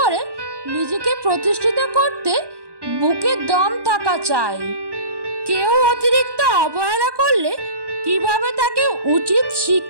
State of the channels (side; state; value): left; late; 1.1 ms